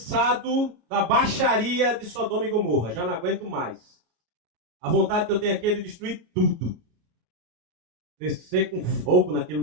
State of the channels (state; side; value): late; left; 33 ms